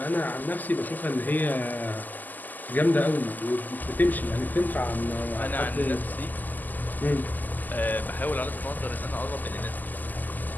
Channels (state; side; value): late; right; 0.084 ms